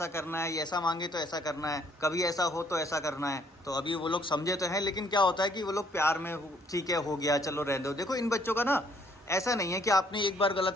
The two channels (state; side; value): normal; both; correlation 0.65